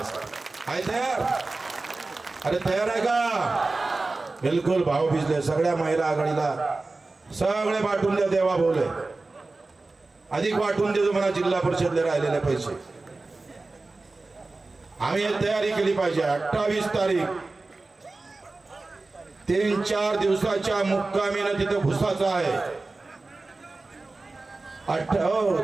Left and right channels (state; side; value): quieter; left; 3.4 dB